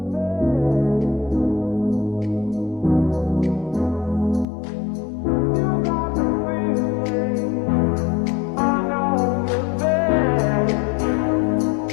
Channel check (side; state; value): right; drops out; at 4.5 s